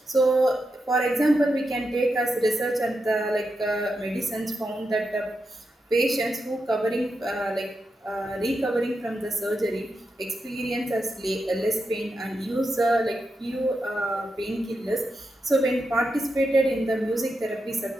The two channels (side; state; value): both; normal; correlation 0.87